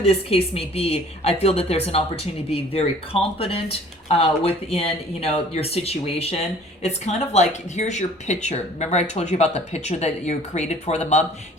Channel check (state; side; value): normal; both; correlation 0.51